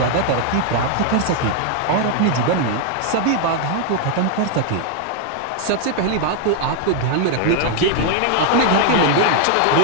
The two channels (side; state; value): both; different; correlation 0.00